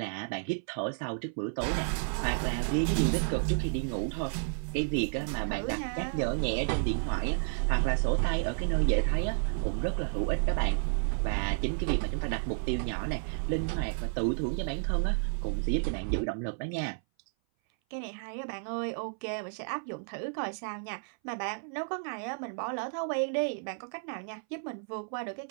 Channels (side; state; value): left; silent; 57 dB below the other